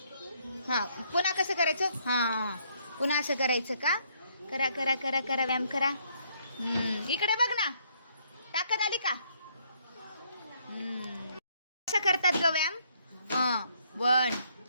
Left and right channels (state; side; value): inverted; both; correlation -0.69